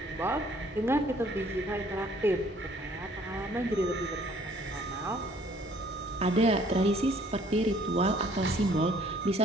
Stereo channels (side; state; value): both; normal; correlation 0.59